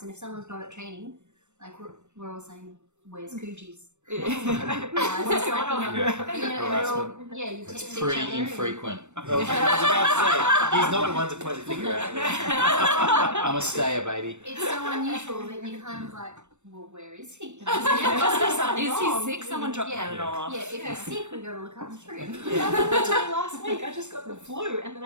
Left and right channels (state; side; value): late; left; 0.83 ms